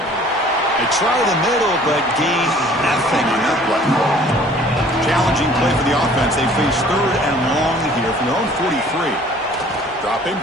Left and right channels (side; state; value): both; normal; correlation 0.53